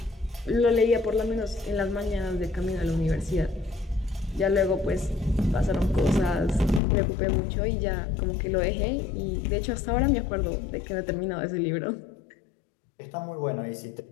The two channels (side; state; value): right; drops out; at 6.8 s